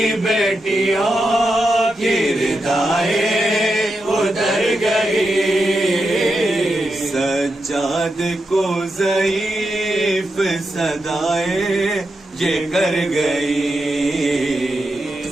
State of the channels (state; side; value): normal; both; correlation 0.87